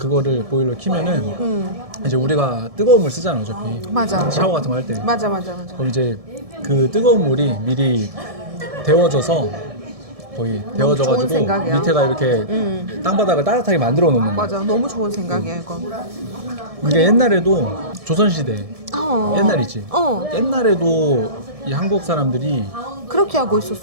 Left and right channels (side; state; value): left; late; 1.7 ms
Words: 보일러 키면은 이제 우리가 뜨거운 물 쓰잖아 어차피. 맞아. 샤워 같은 거 할 때. 맞아. 그럼 이제 그 뜨거운 물이 미리 데워져서 거의 데워져가지고 생각이야. 밑에가 이렇게 땅바닥을 따뜻하게 만들어 놓는 거야. 맞아. 너무 좋은 생각이야 이거. 이게 옛날에도 조선시대 옛날이지. 어. 옛날에도 이 한국 사람들이 그렇게 하고